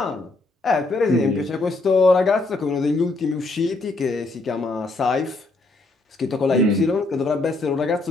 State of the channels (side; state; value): right; quieter; 3.2 dB